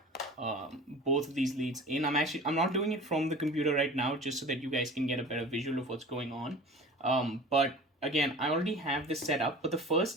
both of these leads in. I'm not doing it from the computer right now, just so that you guys can get a better visual of what's going on. But again, I already have this set up, but the first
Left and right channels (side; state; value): both; normal; correlation 0.39